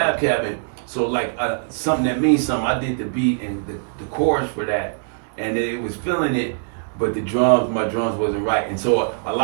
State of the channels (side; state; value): left; silent; digital silence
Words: Cabin, so like something that means something, I did the beat and the chorus for that, and it was feeling it, but my drums wasn't right, and so a